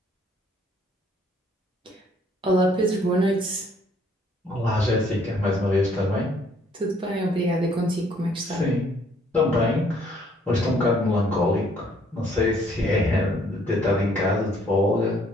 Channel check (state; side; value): normal; both; correlation 0.64